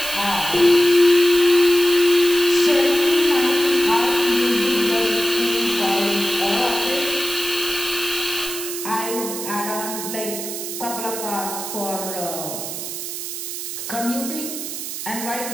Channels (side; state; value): right; noise; hiss, 6 dB below the sound